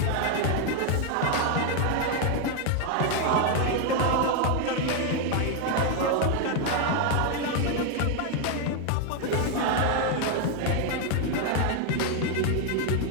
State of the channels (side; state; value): both; different; correlation 0.01